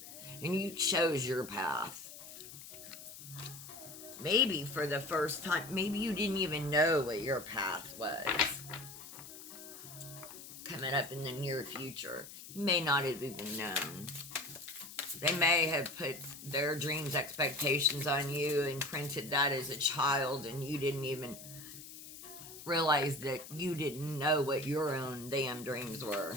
And you chose your path. Maybe for the first time, maybe you didn't even know what your path was. Coming up in the near future, you may not have even known. They may have put their dreams, expectations on you and printed that as a child, and you didn't even realize that you didn't know what your own damn dreams were.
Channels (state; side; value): noise; left; hiss, 14 dB below the sound